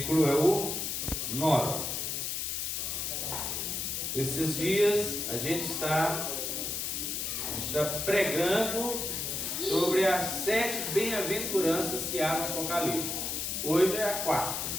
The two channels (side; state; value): left; noise; hiss, 2 dB below the sound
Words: é o 9. Esses dias a gente está pregando sobre as 7 bem-aventuranças que há no Apocalipse. Hoje é a 4ª.